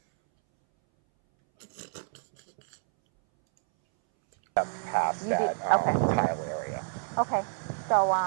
Past You did- that okay. tile area. Okay. So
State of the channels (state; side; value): silent; left; 59 dB below the other